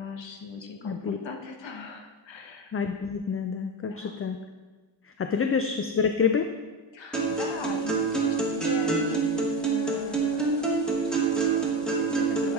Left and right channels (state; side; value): normal; both; correlation 0.20